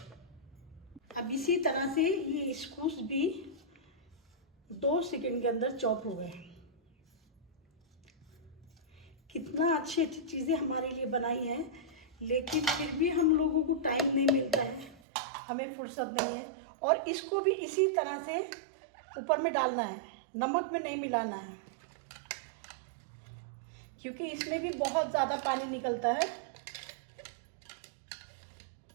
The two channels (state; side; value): drops out; left; at 15.0 s